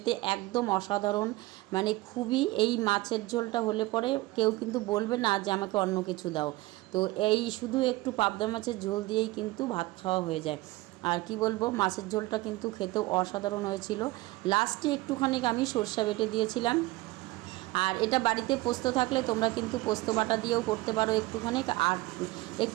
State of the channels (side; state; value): left; quieter; 20.1 dB